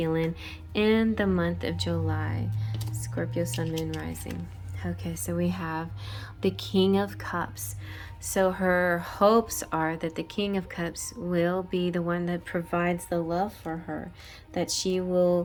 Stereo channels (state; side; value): identical; both; correlation 1.00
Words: in the month of July? Scorpio, Sun, Moon, Rising. Okay, so we have the King of Cups. So her hopes are that the King of Cups will be the one that provides the love for her, that she's